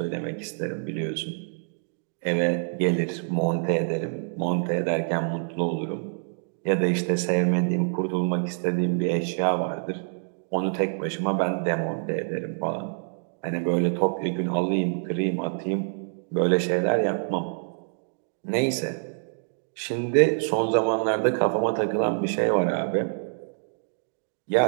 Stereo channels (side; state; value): left; silent; digital silence